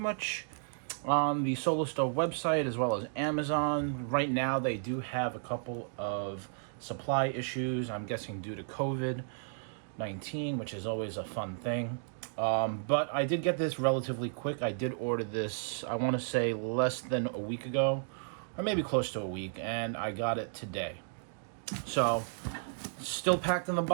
on the Solostove website as well as Amazon. Right now, they do have a couple of supply issues, I'm guessing due to COVID-19, which is always a fun thing. But I did get this relatively quick. I did order this, I want to say, less than a week ago, or maybe close to a week, and I got it today. So, still packed in the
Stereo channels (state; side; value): silent; left; digital silence